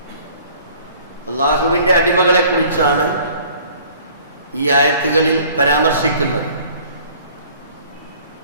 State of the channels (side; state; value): both; inverted; correlation -0.53